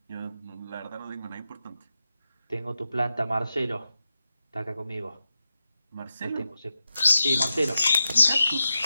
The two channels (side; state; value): both; inverted; correlation -0.89